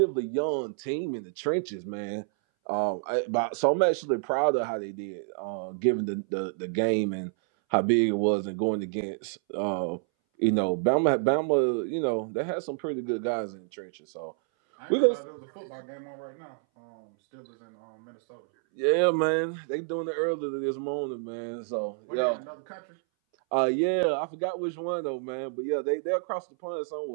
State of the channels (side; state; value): left; silent; 59 dB below the other